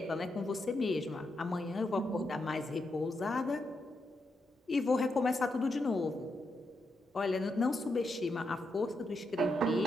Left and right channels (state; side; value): normal; both; correlation 0.83